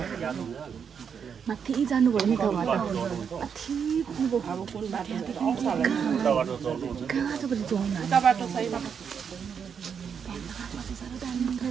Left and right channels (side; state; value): left; quieter; 7.0 dB